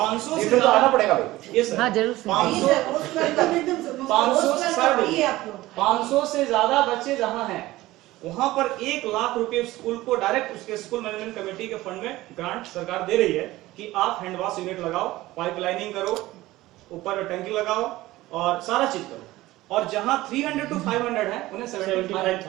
से ज्यादा पड़ेगा। ये सर, 500 से ज्यादा बच्चे जहां हैं वहां पर 1 लाख रुपए स्कूल को डायरेक्ट उसके स्कूल मैनेजमेंट कमेटी के फंड में ग्रांट सरकार दे रही है कि आप हैंड वॉश यूनिट लगाओ, पाइपलाइनिंग करो, ऊपर टंकी लगाओ और सारा चीज करो। और जहां 300 to 500 है उन्हें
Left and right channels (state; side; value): quieter; left; 17.5 dB